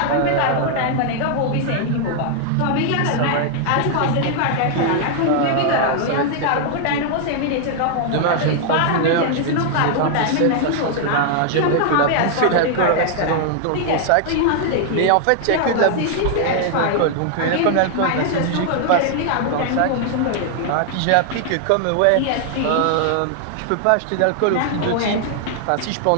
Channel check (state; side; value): different; both; correlation 0.00